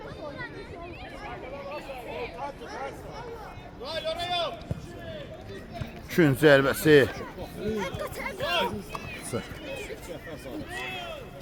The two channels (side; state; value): both; identical; correlation 1.00